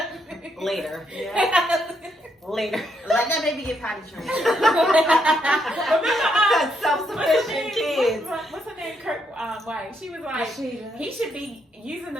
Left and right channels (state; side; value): normal; both; correlation 0.76